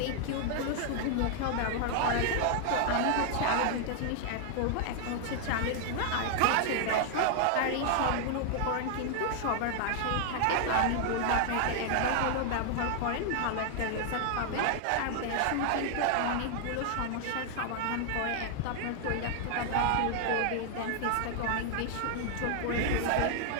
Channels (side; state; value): both; different; correlation -0.01